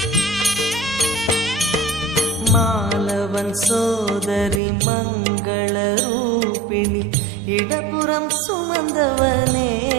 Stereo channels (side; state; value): left; drops out; at 4.6 s